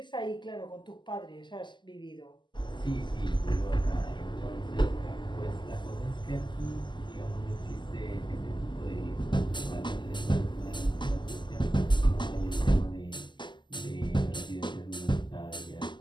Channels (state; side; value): late; right; 0.22 ms